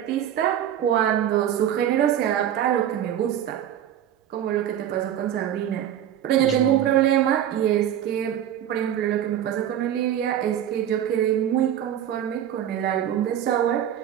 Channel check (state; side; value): quieter; left; 10.6 dB